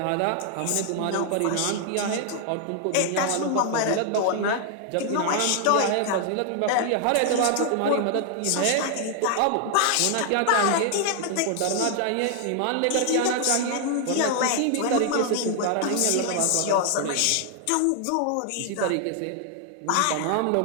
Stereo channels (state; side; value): different; both; correlation 0.00